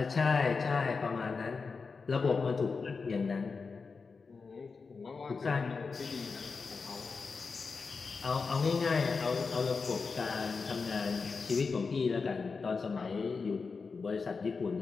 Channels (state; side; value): quieter; right; 4.7 dB